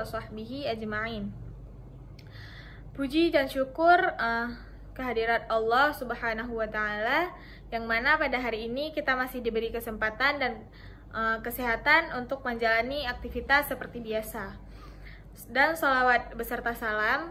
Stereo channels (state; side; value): identical; both; correlation 1.00